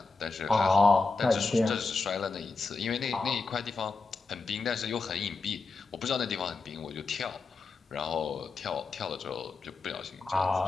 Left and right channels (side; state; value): right; quieter; 4.0 dB